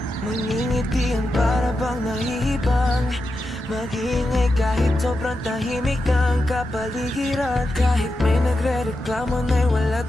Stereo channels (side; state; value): both; normal; correlation 0.89